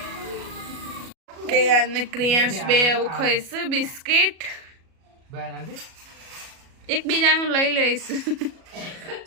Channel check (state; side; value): late; left; 37 ms